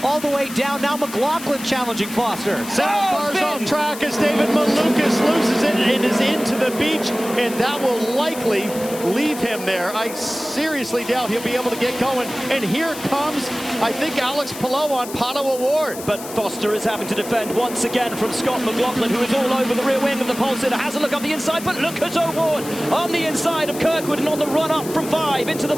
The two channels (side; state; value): left; noise; hiss, 12 dB below the sound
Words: all the way down. Now McLaughlin challenging Foster. 7 cars off track as David Malukas loses it and is into the beach, and that will likely leave him there. I seriously doubt he'll be able to get going. And here comes, I think, Alex Palou on Pato O'Ward. But Foster is having to defend once again from Scott McLaughlin, who is all over the rear wing of the pole sitter. Has a look up the inside, but look at O'Ward on the inside of Kirkwood and on the run up from 5 into the